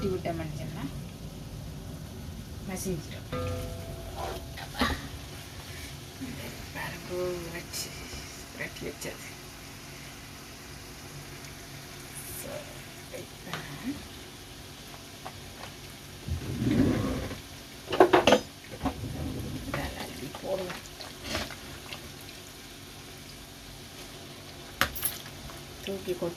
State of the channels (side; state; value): both; identical; correlation 1.00